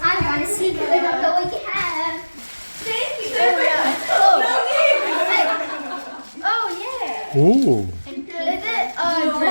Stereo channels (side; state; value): both; inverted; correlation -1.00